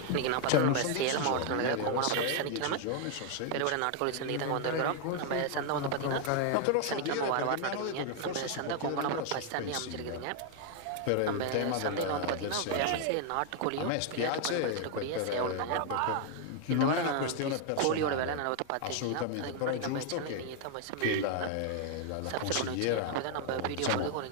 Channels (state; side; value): different; both; correlation 0.00